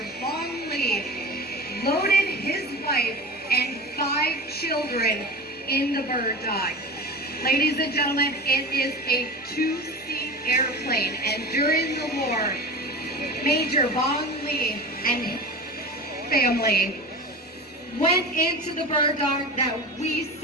Vong Lee loaded his wife and 5 children in the Bird Dog. Ladies and gentlemen, it is a 2-seat airplane, and during the war, Major Vong Lee and his family went into the Bird Dog that we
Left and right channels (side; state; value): both; normal; correlation 0.31